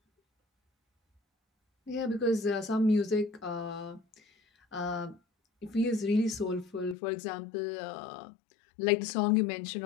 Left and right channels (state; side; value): drops out; right; at 7.0 s